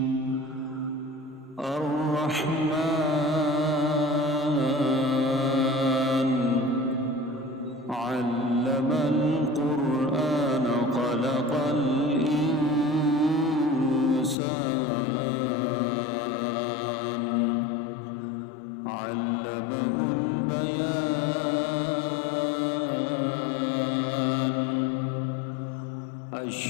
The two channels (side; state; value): right; drops out; at 14.4 s